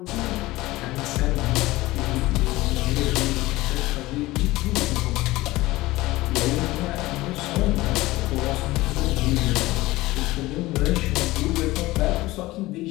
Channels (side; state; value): right; quieter; 18.8 dB